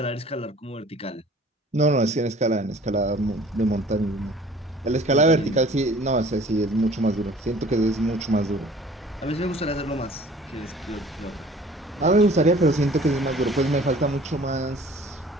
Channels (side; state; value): both; normal; correlation 0.50